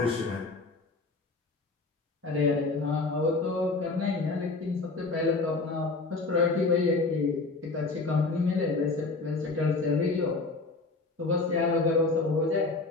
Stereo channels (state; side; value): quieter; right; 3.7 dB